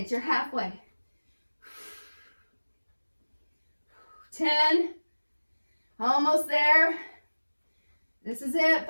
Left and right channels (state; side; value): inverted; both; correlation -1.00